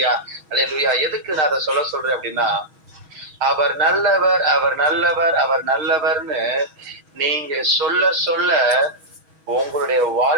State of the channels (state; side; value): late; left; 6.3 ms